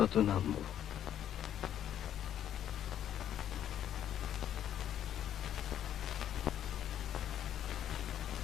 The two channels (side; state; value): right; quieter; 10.4 dB